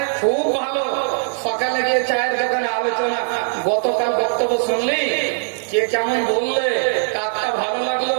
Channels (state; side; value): silent; left; digital silence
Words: খুব ভালো। সকালে গিয়ে চায়ের দোকানে আলোচনা, গতকাল বক্তব্য শুনলি, কে কেমন বললে, কাকটা ভালো লাগলো,